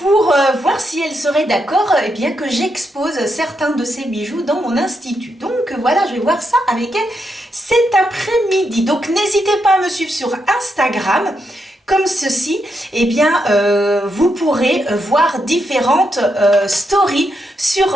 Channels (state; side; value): normal; both; correlation 0.82